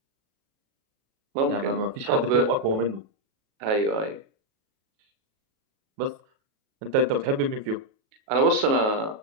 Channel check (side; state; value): left; late; 37 ms